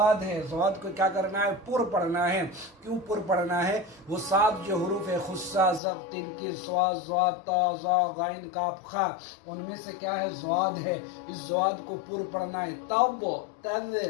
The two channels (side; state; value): right; drops out; at 5.8 s